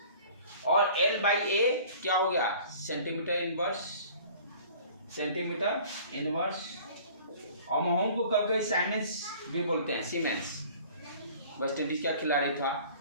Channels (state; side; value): inverted; both; correlation -0.48